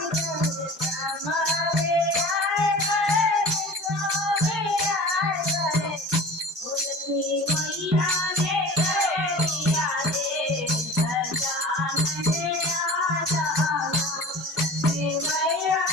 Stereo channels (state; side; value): normal; both; correlation 0.39